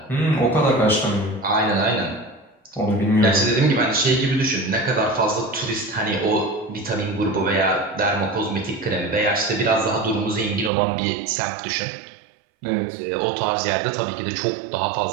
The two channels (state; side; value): drops out; left; at 10.7 s